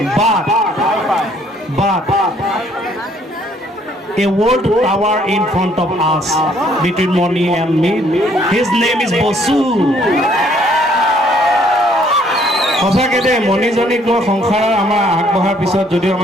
But a world tower in front of us between Moni and me. His name is Bosu. সঁচাকৈ দেই মণিজনীক লৈ সংসাৰৰ আমাৰ আগবঢ়াৰ পিছত যদিও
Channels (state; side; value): normal; both; correlation 0.64